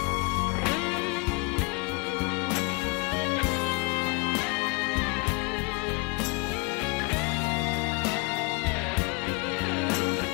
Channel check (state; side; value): quieter; right; 28.1 dB